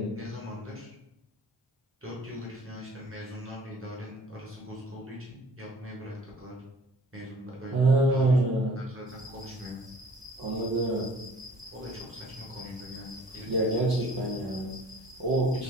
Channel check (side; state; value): both; normal; correlation 0.52